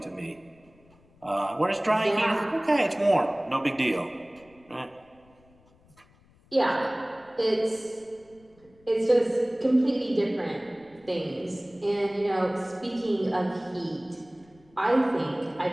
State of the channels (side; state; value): left; noise; rumble, 30 dB below the sound